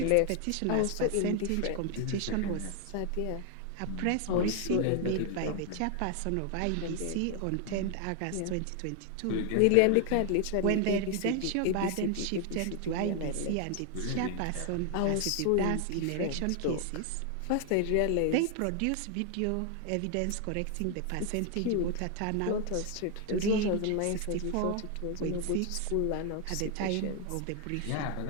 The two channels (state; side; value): different; both; correlation 0.00